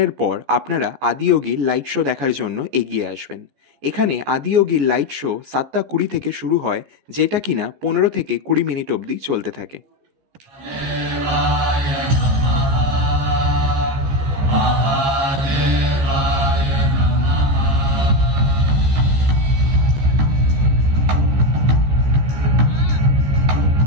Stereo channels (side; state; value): left; late; 15 ms